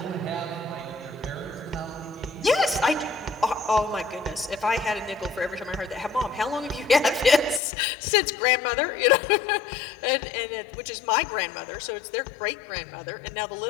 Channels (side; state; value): right; drops out; at 7.6 s